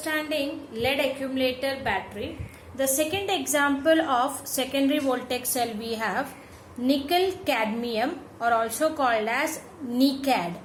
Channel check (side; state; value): both; identical; correlation 1.00